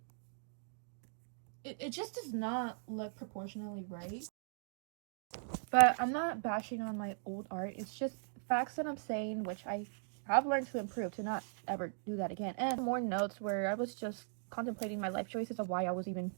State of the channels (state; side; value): silent; left; digital silence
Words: it just does not look proportionally right. But I'm not bashing on my old art. It's just facts that I'm saying, which I have learned to improve to not ever do that again. And more notes where I was just contemplating my life choices of why I was even